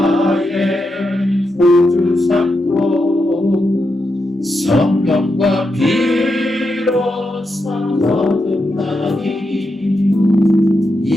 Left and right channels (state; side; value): normal; both; correlation 0.86